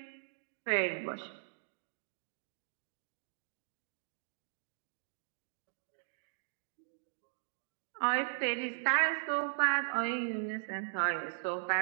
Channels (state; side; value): silent; left; digital silence